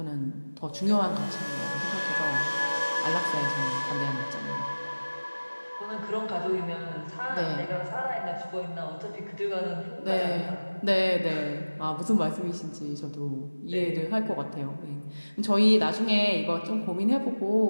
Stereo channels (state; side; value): inverted; both; correlation -1.00